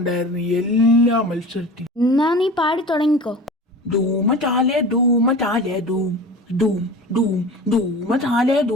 എല്ലാ മത്സരത്തിലും. എന്നാ നീ പാടി തുടങ്ങിക്കോ. ധൂമ ചാലേ ധൂമ ചാലേ ധൂം ധൂം ധൂം ധൂമ ചാലേ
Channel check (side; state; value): both; normal; correlation 0.36